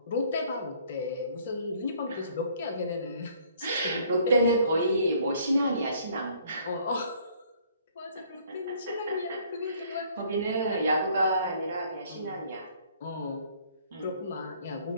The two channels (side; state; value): both; inverted; correlation -0.60